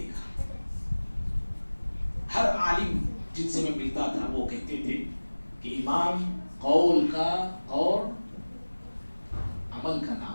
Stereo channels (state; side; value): inverted; both; correlation -1.00